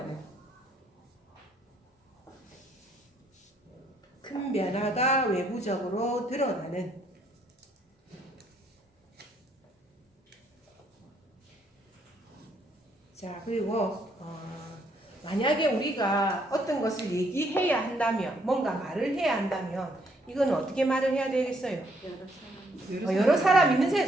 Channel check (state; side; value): normal; both; correlation 0.70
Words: 자 그리고 만약에 우리가 어떤 것을 얘기해야 한다면, 뭔가 말을 해야 한다면 이거는 어떻게 말을 해야 되겠어요? 여러 사람